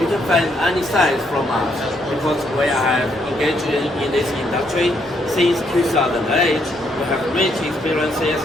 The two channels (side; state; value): both; normal; correlation 0.73